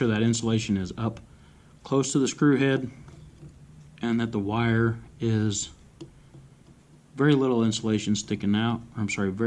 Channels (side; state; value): both; identical; correlation 1.00